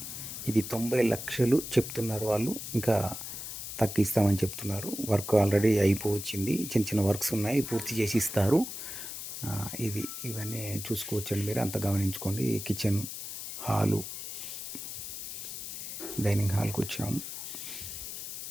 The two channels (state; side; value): noise; left; hiss, 8 dB below the sound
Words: ఇది 90 లక్షలు చెప్తున్నారు వాళ్ళు, ఇంకా తగ్గిస్తామని చెప్తున్నారు. వర్క్ ఆల్రెడీ అయిపోవచ్చింది, చిన్న చిన్న వర్క్స్ ఉన్నాయి, పూర్తి చేసి ఇస్తారు. ఇవన్నీ చూసుకోవచ్చండి, మీరు అంత గమనించుకోండి. కిచెన్, హాలు, డైనింగ్ హాల్కి వచ్చాము.